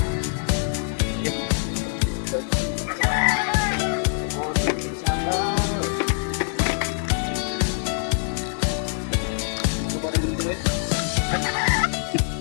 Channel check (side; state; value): right; silent; 63 dB below the other